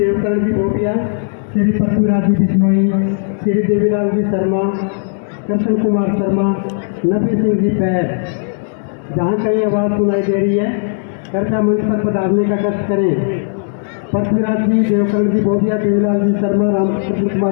जी भोटिया, श्री पृथ्वीराज जी बिश्नोई, श्री देवीलाल जी शर्मा, कृष्ण कुमार शर्मा, नबी सिंह जी पैर। जहाँ कहीं आवाज़ सुनाई दे रही है कृपया मंच पर पधारने का कष्ट करें। पृथ्वीराज जी, देवकरण जी भोटिया, देवीलाल जी शर्मा, रामकृष्ण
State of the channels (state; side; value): silent; right; digital silence